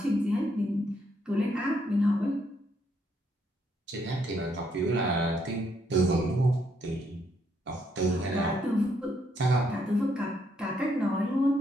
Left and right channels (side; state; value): both; normal; correlation 0.73